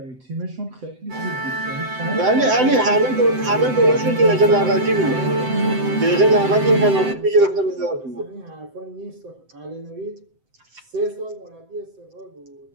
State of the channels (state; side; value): late; left; 7.8 ms